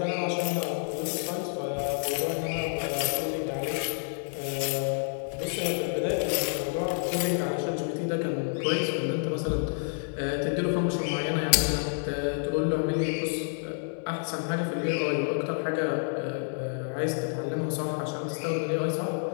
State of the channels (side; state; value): right; silent; 59 dB below the other